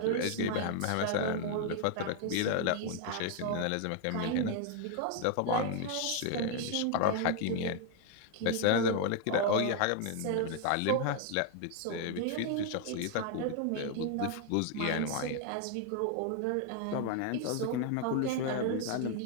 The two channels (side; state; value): both; different; correlation 0.00